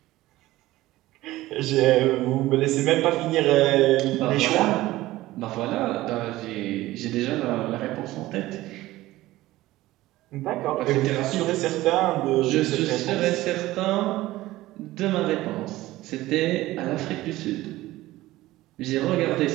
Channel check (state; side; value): quieter; left; 17.1 dB